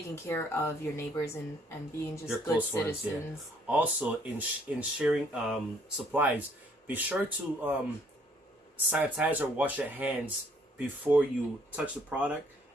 care of your neighbors and being just good citizens. Ones, also, in sharing supplies, be sure to sanitize or wash your hands before you touch the product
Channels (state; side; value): normal; both; correlation 0.63